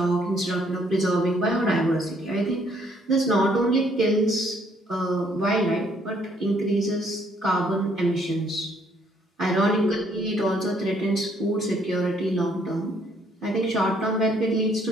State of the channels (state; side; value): normal; both; correlation 0.67